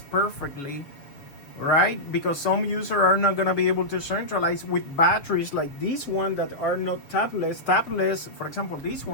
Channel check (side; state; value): right; late; 7.0 ms